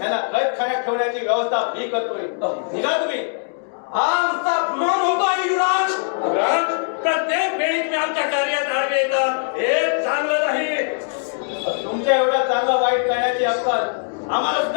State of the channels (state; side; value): silent; right; digital silence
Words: कैदखान्यात ठेवण्याची व्यवस्था मी करतोय. निघा तुम्ही. आमचा अपमान होतोय युवराज. युवराज, प्रत्येक वेळी तुम्ही आमच्या कार्यात आडवे येतात, हे चांगलं नाही. तुमच्या एवढा चांगला वाईट करण्याची अक्कल आम्हाला